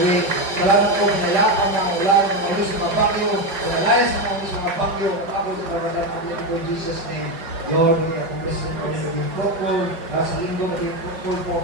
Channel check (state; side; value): late; left; 5.4 ms